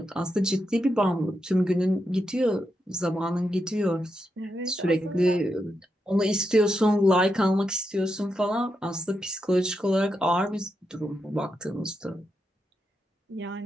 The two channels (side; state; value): both; normal; correlation 0.85